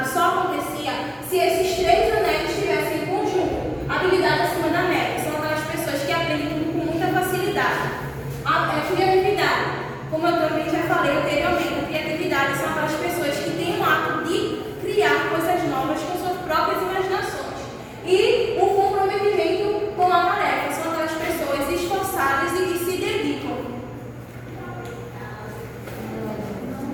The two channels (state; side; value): identical; both; correlation 1.00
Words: só acontecia se esses 3 anéis estivessem em conjunto. Habilidade acima da média são aquelas pessoas que aprendem tudo com muita facilidade. A criatividade, como eu também já falei anteriormente, a criatividade são aquelas pessoas que têm o ato de criar coisas novas com suas próprias imaginações. E o comprometimento com a tarefa são aquelas pessoas esforçadas e que se dedicam.